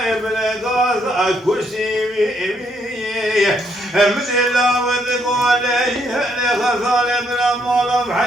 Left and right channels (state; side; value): normal; both; correlation 0.73